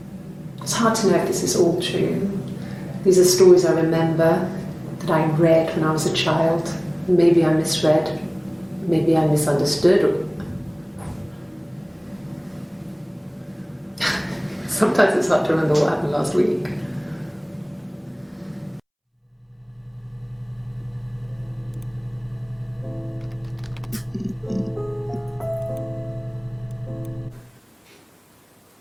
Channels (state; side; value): identical; both; correlation 1.00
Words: It's hard to know if this is all true. These are stories I remember, that I read when I was a child. Maybe I misread, maybe I misunderstood. Sometimes it's hard to remember what happened last week.